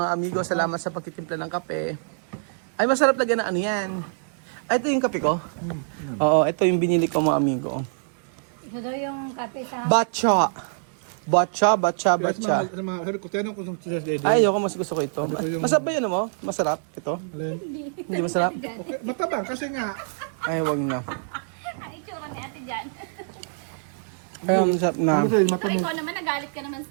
amigo. Salamat sa pagtitimpla ng kape. Ay, masarap lagyan na ano yan. Ay, ito yung kape ko. Oo, ito yung binili ko mga amigo. Ito daw yung kape sa... Batcha. Sabi ko, tinanong ko sa Dede. Ay, ayoko, mas gusto ko ito. Masarap ba yun mo? Masarap ito? Hindi masarap? Okay, matabang kasi nga, Ay, wag na. Ang itsura ni ate dyan. Ay, masarap na. kasi matabang. Ikaw naman, nagalit ka naman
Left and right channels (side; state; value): left; silent; digital silence